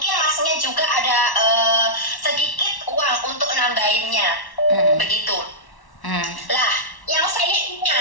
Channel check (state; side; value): late; right; 1.1 ms